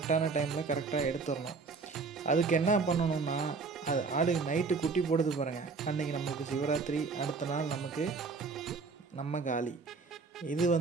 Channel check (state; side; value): quieter; left; 4.5 dB